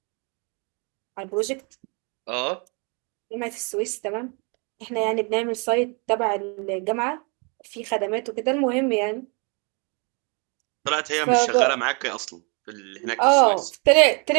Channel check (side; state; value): left; quieter; 33.6 dB